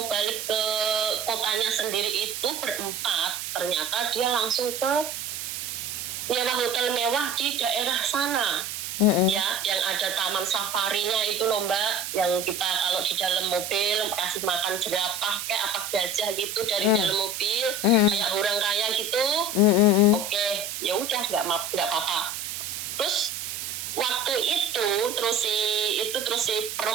balik ke kotanya sendiri itu berempat, ternyata dia langsung ke nyewa hotel mewah di daerah sana. Ya, yang ada taman safarinya itu loh Mbak, yang kita kalau di dalam mobil kasih makan jerapah kayak apa gajah gitu dari dalam mobil, kayak orang kaya gitu. Oke, ya udah nggak apa-apa. Terus waktu itu terus si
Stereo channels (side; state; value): right; noise; hiss, 5 dB below the sound